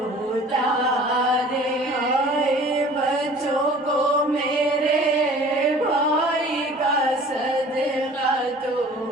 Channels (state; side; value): normal; both; correlation 0.47